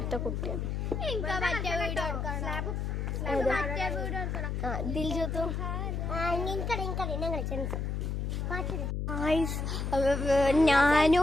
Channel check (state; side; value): noise; left; hum, 2 dB below the sound